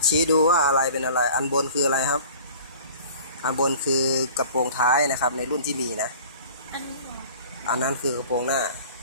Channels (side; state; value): both; inverted; correlation -0.46